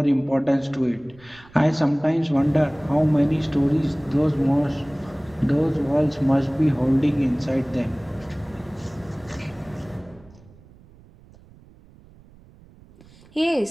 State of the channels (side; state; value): right; noise; rumble, 25 dB below the sound